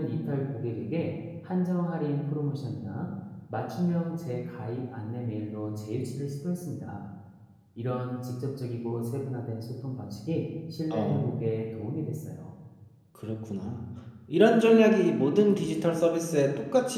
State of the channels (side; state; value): both; identical; correlation 1.00